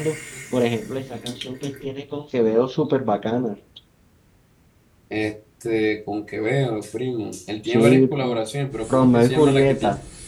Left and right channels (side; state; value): both; identical; correlation 1.00